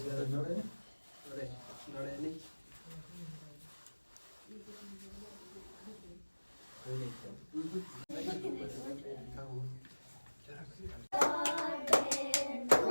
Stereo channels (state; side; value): inverted; both; correlation -1.00